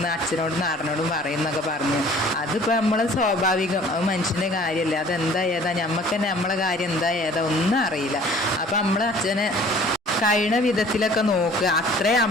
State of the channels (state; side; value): normal; both; correlation 0.51